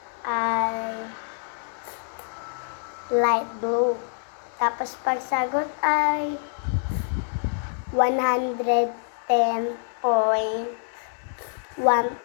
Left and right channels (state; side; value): silent; right; 61 dB below the other